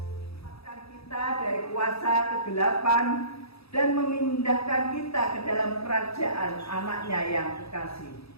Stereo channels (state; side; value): late; right; 0.77 ms